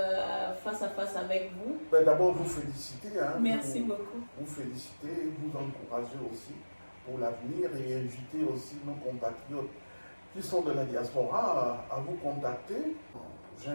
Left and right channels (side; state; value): both; inverted; correlation -1.00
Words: face à face avec vous? D'abord, vous féliciter. Merci beaucoup. Vous féliciter, vous encourager aussi pour l'avenir et inviter aussi nos compatriotes qui sont de la diaspora à vous contacter.